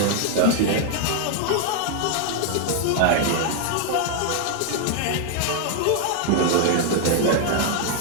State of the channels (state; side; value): different; both; correlation 0.00